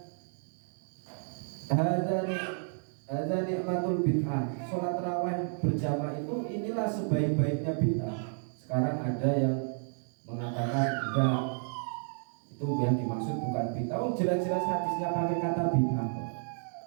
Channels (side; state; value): left; silent; 57 dB below the other